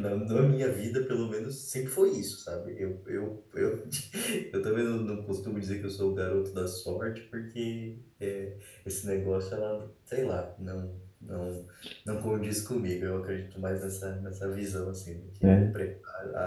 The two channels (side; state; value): both; identical; correlation 1.00